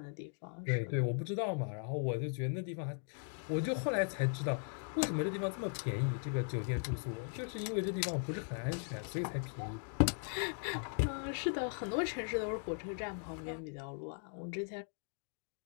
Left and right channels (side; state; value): right; silent; 52 dB below the other